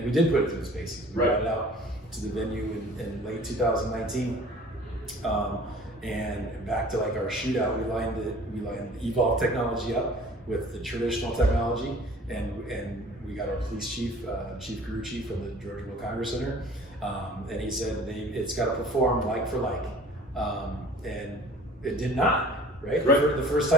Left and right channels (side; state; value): both; normal; correlation 0.48